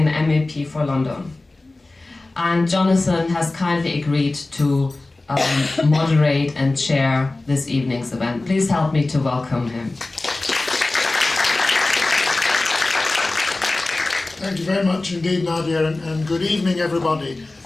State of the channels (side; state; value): right; quieter; 3.1 dB